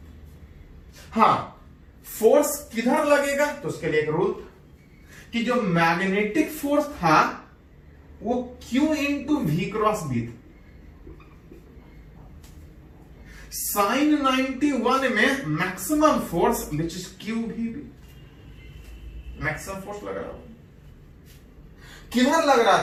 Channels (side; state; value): both; identical; correlation 1.00